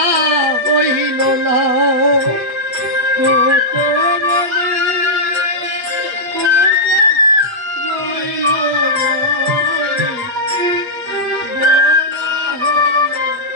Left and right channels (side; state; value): left; late; 8.3 ms